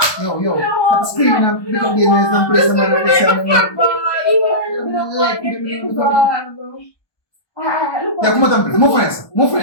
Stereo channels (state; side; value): late; right; 1.2 ms